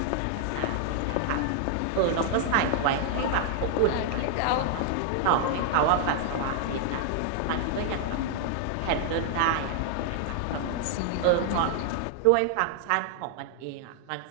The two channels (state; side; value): different; both; correlation 0.00